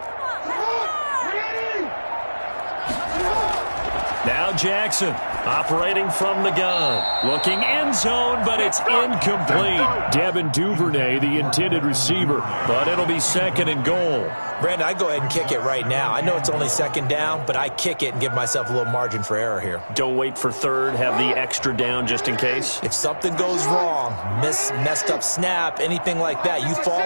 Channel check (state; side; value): inverted; both; correlation -1.00